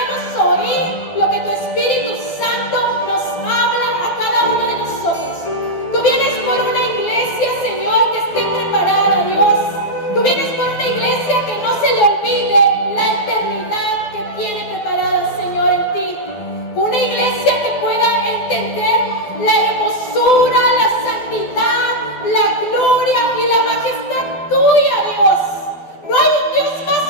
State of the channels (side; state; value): right; late; 12 ms